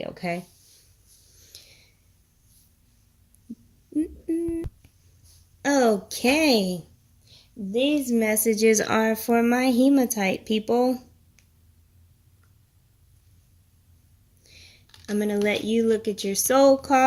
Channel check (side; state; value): both; identical; correlation 1.00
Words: okay? Okay. These messages are for my hematite people. I'm going to let you look at your soul